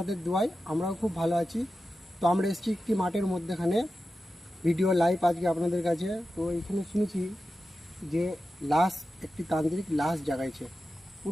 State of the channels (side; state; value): both; normal; correlation 0.92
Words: দোয়ায় আমরাও খুব ভালো আছি। তো আমরা এসেছি একটি মাঠের মধ্যেখানে, ভিডিও লাইভ আজকে আপনাদের কাছে। তো এখানে শুনেছি যে লাশ, একটি তান্ত্রিক লাশ জাগাইছে।